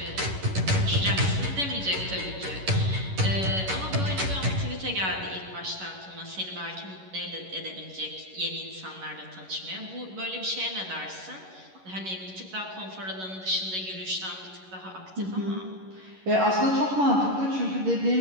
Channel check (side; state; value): left; late; 11 ms